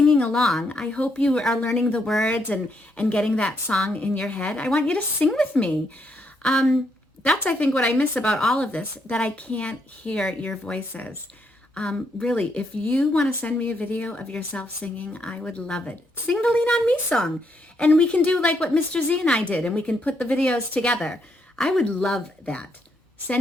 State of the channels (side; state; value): both; normal; correlation 0.76